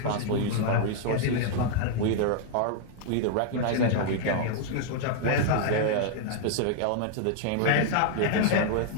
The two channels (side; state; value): both; different; correlation 0.00